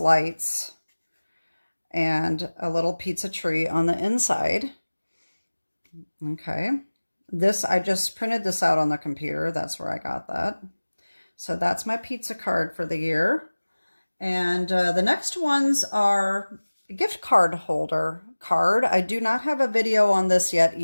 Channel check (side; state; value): both; inverted; correlation -1.00